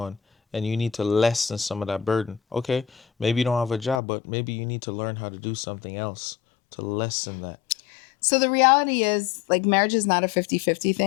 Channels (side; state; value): right; drops out; at 4.0 s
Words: and you need to lessen some of that burden. Okay, maybe you don't have a job, but maybe you need to learn how to do something else to lessen that. So the reality is like marriage is not a 50-50